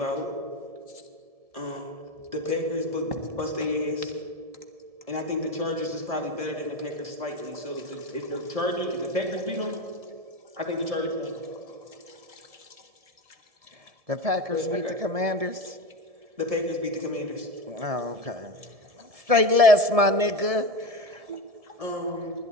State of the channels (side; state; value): left; late; 1.7 ms